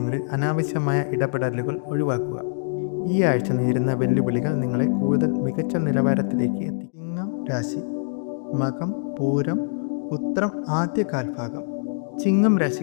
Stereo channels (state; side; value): silent; right; digital silence